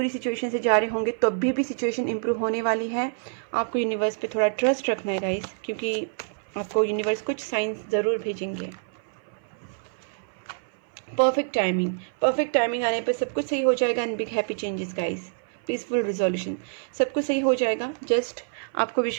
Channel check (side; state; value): left; silent; 56 dB below the other